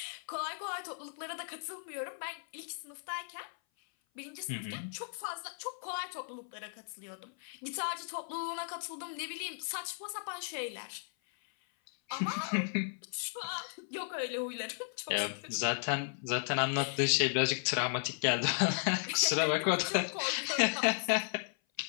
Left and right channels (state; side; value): silent; right; 54 dB below the other